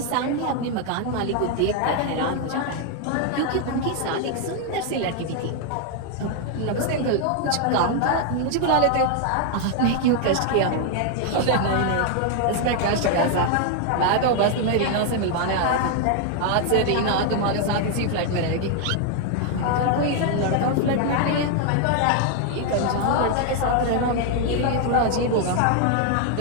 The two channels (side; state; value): both; different; correlation 0.00